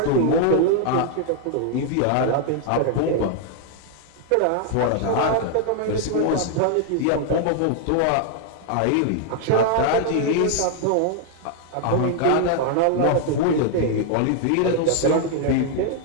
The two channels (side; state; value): both; different; correlation 0.00